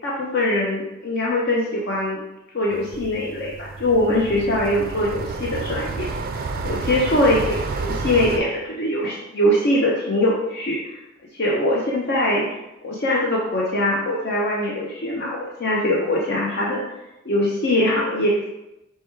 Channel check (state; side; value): normal; both; correlation 0.16